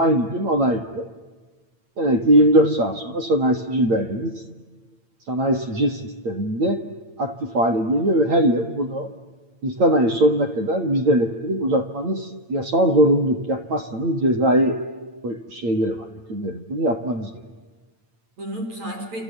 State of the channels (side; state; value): left; late; 8.9 ms